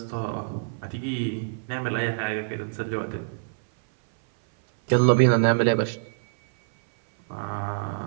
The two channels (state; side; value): silent; left; 59 dB below the other